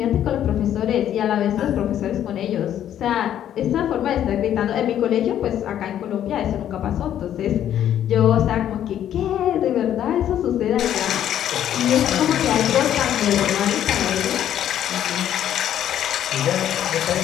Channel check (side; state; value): right; quieter; 10.8 dB